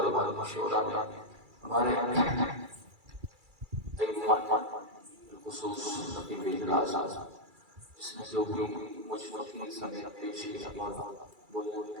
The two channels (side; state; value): left; late; 2.3 ms